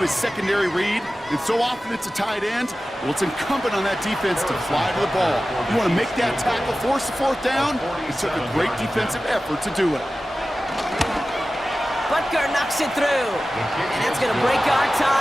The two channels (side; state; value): both; normal; correlation 0.95